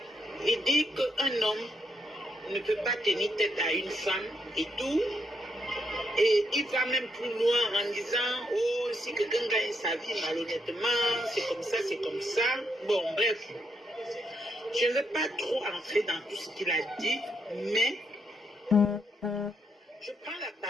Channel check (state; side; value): normal; both; correlation 0.77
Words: il dit qu'un homme ne peut pas tenir tête à une femme et tout. Et il va même plus loin en disant, oh, si quelqu'un gagne sa vie malhonnêtement, c'est comme ça, c'est comme ça. Bon, bref. Je ne vais pas trop entrer dans tout ce qu'il a dit, mais je prends la